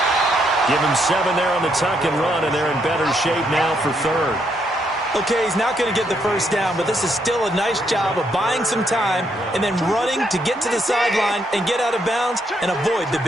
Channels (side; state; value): both; normal; correlation 0.75